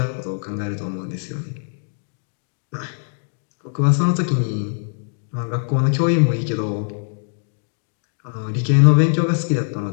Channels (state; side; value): silent; right; digital silence